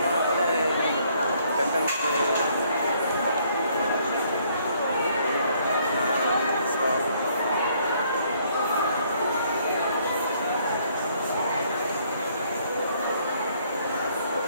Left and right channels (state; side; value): inverted; both; correlation -0.66